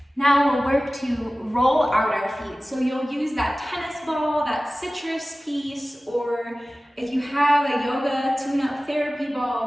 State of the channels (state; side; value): normal; both; correlation 0.97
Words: Now we'll work to roll out our feet. So you'll use that tennis ball, that citrus piece, or if you have a yoga tune-up therapy